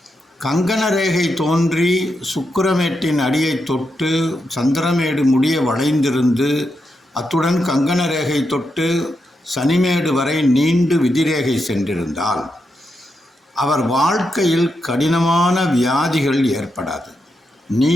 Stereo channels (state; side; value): normal; both; correlation 0.85